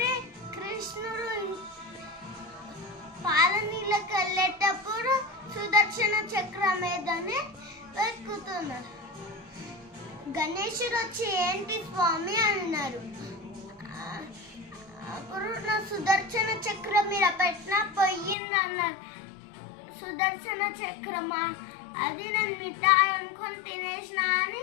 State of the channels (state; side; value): drops out; right; at 18.4 s